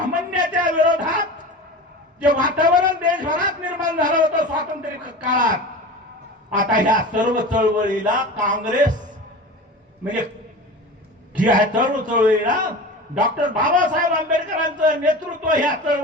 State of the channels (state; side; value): normal; both; correlation 0.33